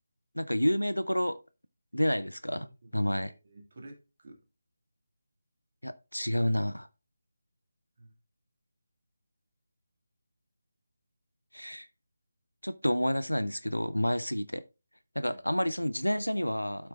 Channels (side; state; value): both; inverted; correlation -0.99